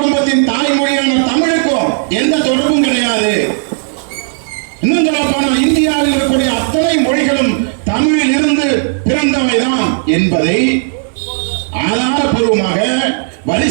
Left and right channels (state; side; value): silent; left; digital silence